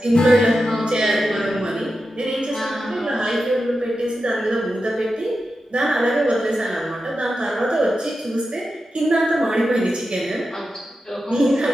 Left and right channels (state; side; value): normal; both; correlation 0.90